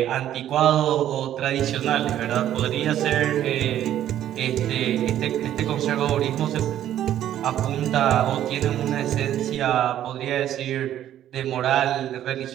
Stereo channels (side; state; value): left; quieter; 11.6 dB